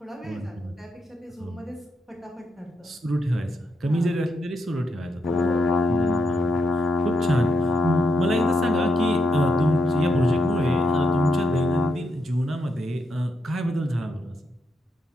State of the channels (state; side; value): normal; both; correlation 0.81